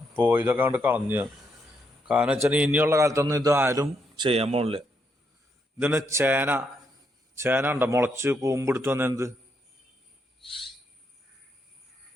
ഇതൊക്കെ കൊണ്ട് കളഞ്ഞ്. കാരണം വെച്ചാൽ ഇനിയുള്ള കാലത്തൊന്നും ഇത് ആരും ചെയ്യാൻ പോണില്ല. ഇതിന് ചേന ഉണ്ടോ മുളച്ച് കൂമ്പെടുത്ത് വന്ന എന്ത്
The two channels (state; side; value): normal; both; correlation 0.77